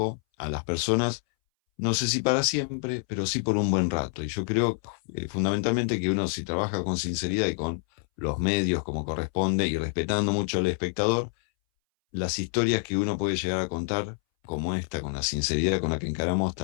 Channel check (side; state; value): right; silent; 60 dB below the other